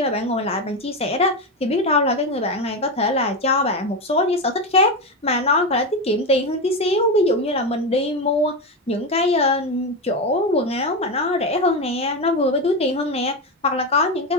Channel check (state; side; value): normal; both; correlation 0.14